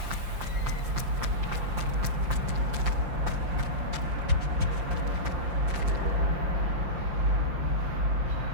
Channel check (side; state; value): left; late; 5.7 ms